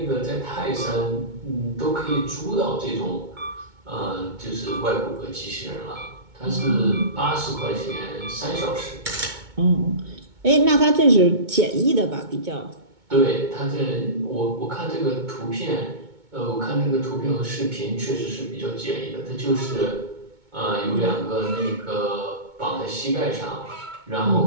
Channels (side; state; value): left; late; 2.2 ms